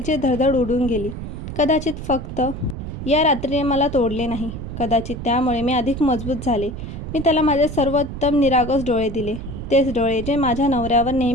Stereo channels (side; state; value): right; noise; rumble, 8 dB below the sound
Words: धडधड उडून गेली. कदाचित फक्त या रात्रीने मला तोडले नाही. कदाचित त्यामुळे मी अधिक मजबूत झाले. मी त्याला माझे सर्वोत्तम निरागस डोळे दिले. तेच डोळे जे माझ्या नवऱ्यावर